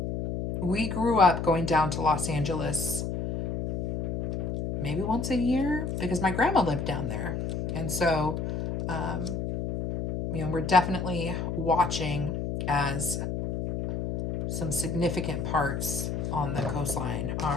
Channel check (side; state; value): left; noise; hum, 2 dB below the sound